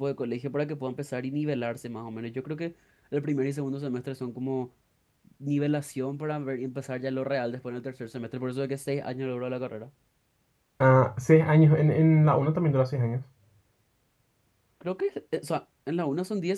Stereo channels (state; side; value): identical; both; correlation 1.00